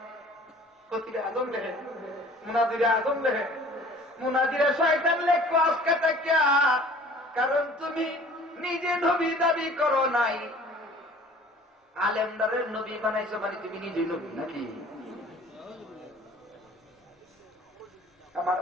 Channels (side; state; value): both; normal; correlation 0.49